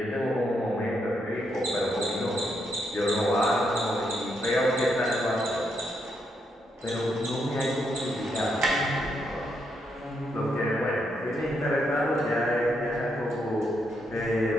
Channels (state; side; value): normal; both; correlation 0.78